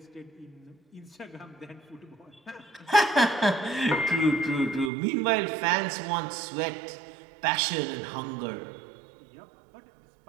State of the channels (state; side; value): drops out; left; at 4.9 s